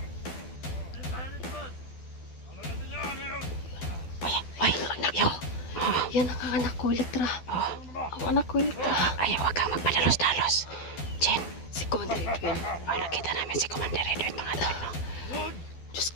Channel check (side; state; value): right; late; 12 ms